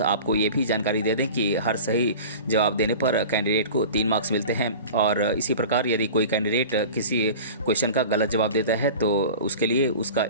आपको ये भी जानकारी दे दें कि हर सही जवाब देने पर कैंडिडेट को 3 मार्क्स मिलते हैं और इसी प्रकार यदि कोई कैंडिडेट किसी क्वेश्चन का गलत जवाब देता है तो उसके लिए उसका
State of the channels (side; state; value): both; inverted; correlation -0.37